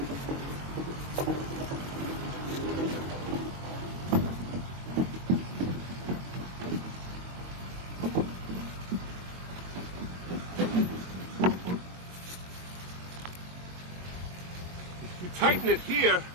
You tighten it here,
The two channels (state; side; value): late; left; 22 ms